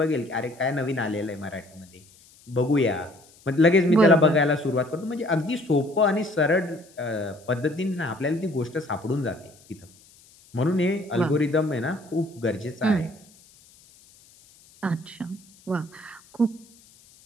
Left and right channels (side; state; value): left; noise; hiss, 27 dB below the sound